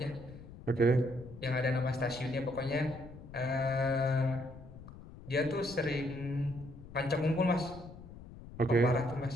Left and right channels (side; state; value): left; noise; rumble, 16 dB below the sound